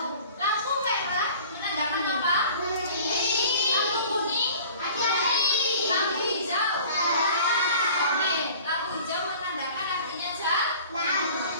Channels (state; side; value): inverted; both; correlation -0.45